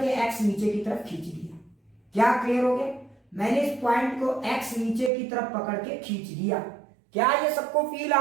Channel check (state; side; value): drops out; left; at 5.1 s